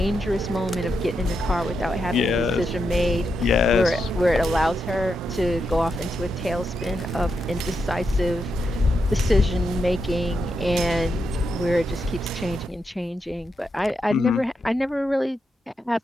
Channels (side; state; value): both; normal; correlation 0.84